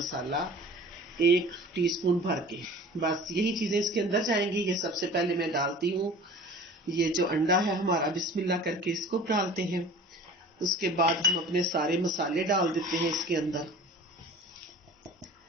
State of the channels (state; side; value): normal; both; correlation 0.43